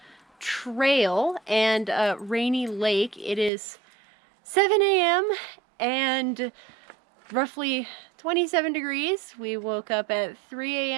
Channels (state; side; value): drops out; left; at 3.5 s